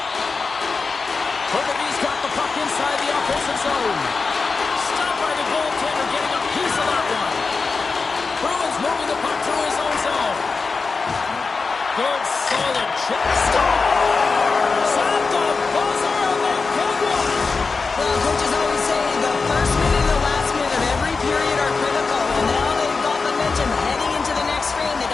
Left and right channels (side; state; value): right; quieter; 4.4 dB